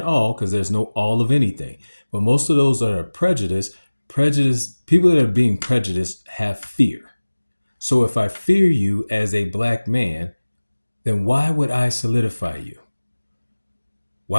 all because there's no all of anything, but most of those that are prejudiced, people that are being prejudiced have fear. So if I fear you as a black man, then why would I solidify you?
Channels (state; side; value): inverted; both; correlation -1.00